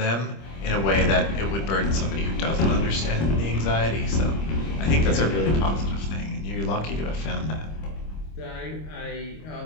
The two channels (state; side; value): late; right; 25 ms